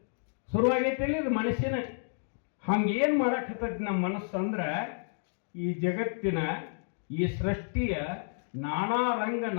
ಶುರುವಾಗೈತಿ ಇದು ಮನುಷ್ಯನ ಹಂಗೇನು ಮಾಡಕತ್ತೈತಿ ನಮ್ಮ ಮನಸ್ಸು ಅಂದ್ರೆ ಈ ಜಗತ್ತಿನ ಈ ಸೃಷ್ಟಿಯ ನಾನಾ ರಂಗ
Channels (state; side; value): silent; right; digital silence